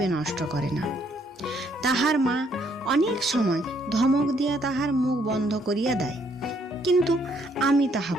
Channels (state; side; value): normal; both; correlation 0.68